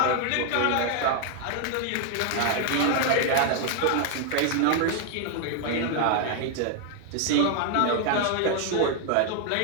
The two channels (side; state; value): both; different; correlation 0.00